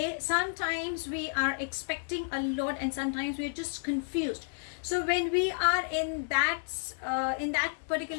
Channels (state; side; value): silent; right; 57 dB below the other